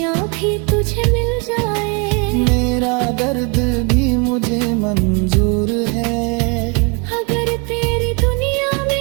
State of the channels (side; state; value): left; quieter; 32.6 dB